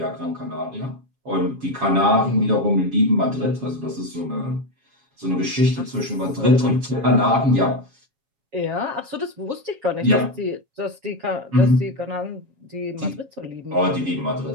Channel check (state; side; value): late; left; 7.3 ms